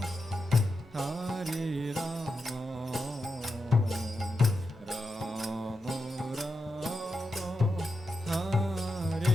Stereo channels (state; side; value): normal; both; correlation 0.88